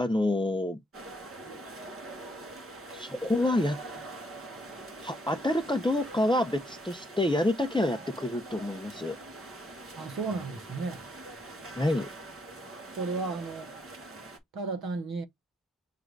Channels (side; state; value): both; normal; correlation 0.73